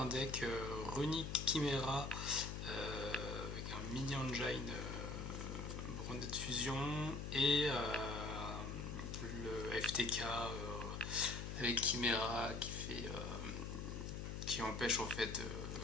deck Runic Chimera avec un mini engine Branded Fusion et le FTK avec Chimera qui empêche en fait,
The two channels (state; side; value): noise; left; hum, 5 dB below the sound